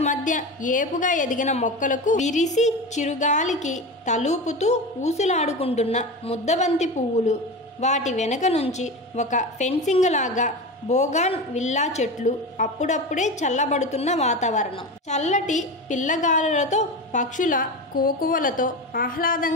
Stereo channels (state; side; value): normal; both; correlation 0.25